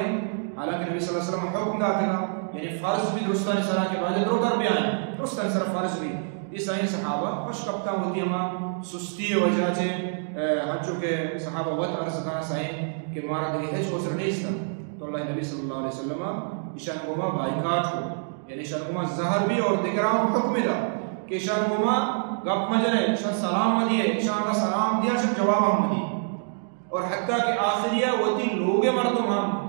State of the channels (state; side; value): silent; left; digital silence